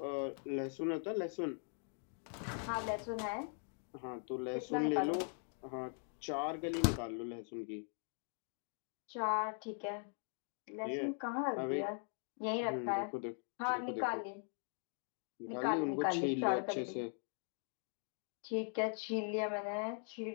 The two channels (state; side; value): silent; right; 50 dB below the other